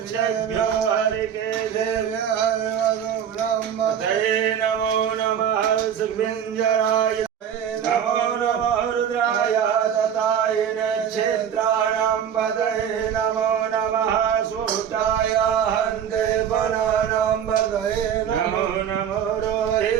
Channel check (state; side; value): quieter; left; 8.7 dB